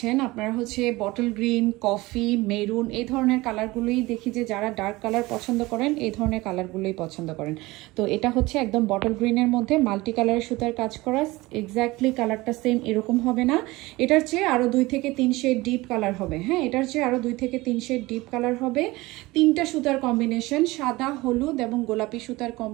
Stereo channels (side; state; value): left; quieter; 20.7 dB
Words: আপনারা হচ্ছে বটল গ্রিন, কফি, মেরুন এই ধরনের কালারগুলোই দেখি যে যারা ডার্ক কালার পছন্দ করেন এই ধরনের কালারগুলোই পছন্দ করেন। তো এটা হচ্ছে একদম বটল গ্রিনের মধ্যে মাল্টি কালারের সুতার কাজ করা। এক্স্যাক্টলি কালারটা সেম এরকম হবে না, এটার চেয়ে আরও 2 থেকে 3 শেড ডিপ কালার হবে। হ্যাঁ, এটার চেয়ে আরও 2 থেকে 3 শেড ডিপ কালার হবে। 3টা সুতার কম্বিনেশন, সাদা, হলুদ এবং গোলাপি সুতার